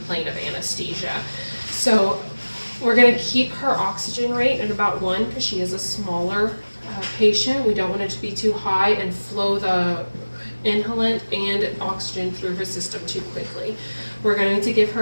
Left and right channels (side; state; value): both; inverted; correlation -1.00